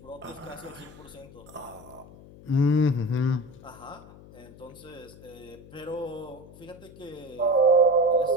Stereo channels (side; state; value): left; noise; hum, 20 dB below the sound